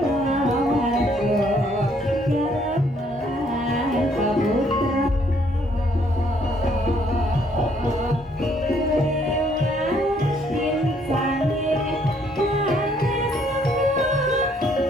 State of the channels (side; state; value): both; normal; correlation 0.66